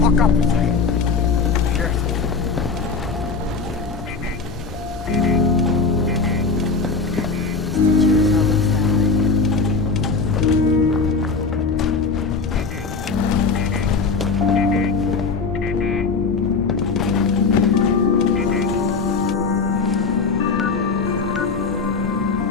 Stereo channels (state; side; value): quieter; right; 4.6 dB